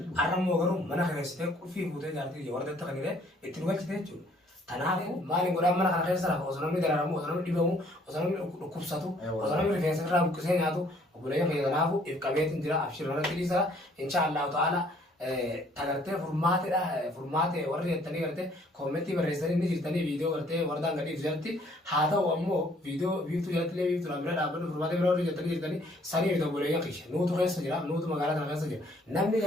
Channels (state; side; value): normal; both; correlation 0.61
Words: arrammoo garuu mana keessatee qulfii fuutee jaartii wardeetta kan jedhee itti dhugachite jechuudha. Kanaafuu maaliin godhaan mana kana keessa lafa osoo namni dararamu osoo namni dhibamu osoo namni dhukkubsatu osoo namni rifeensa irraa buqqisee nyaatu obboleeyyan keenya kanaafuu if qabeetiin jira abshirmanatti dhiisaa insha Allahu ta'ala tagartee furmaate warri jettanii gartee koomentii barreessanii ni jirtanii viidiyoo gartee wardaan gadhiif jirti haa ta'u ammoo viidiyoo biiftuu jalatti biiftuu bira dhaabbatu furmaate bira warri jettanii jirtanii sanii fi obboleeyyan keenya nuutu keessa jira nuutu magaalaa kana keessa jira namni